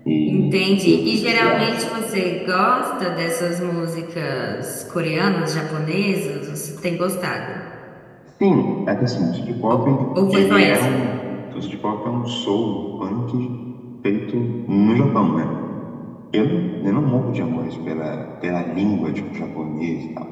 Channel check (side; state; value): both; identical; correlation 1.00